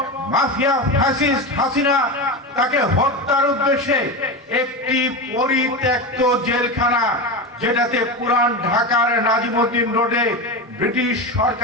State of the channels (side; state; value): both; normal; correlation 0.20